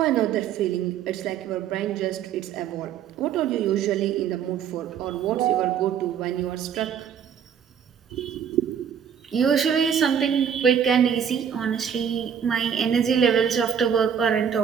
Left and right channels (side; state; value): left; quieter; 8.2 dB